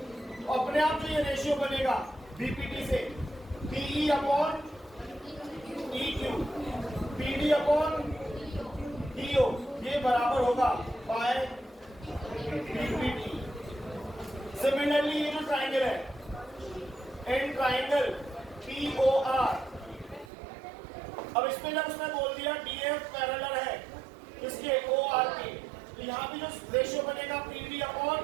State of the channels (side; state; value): left; drops out; at 20.3 s